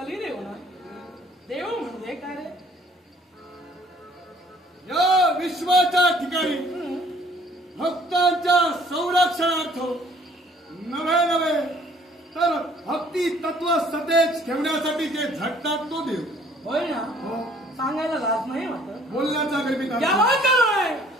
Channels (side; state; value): both; normal; correlation 0.58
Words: ना. देव म्हणजे काय रे? या विश्वाच्या ठिकाणी भक्तांच्या संरक्षणार्थ नवे नवे तर भक्ती तत्व सतेज ठेवण्यासाठी जे झटतात तो देव होय ना. सांगायला लाज नाही वाटत. बोलण्याचा गर्भित याला काय?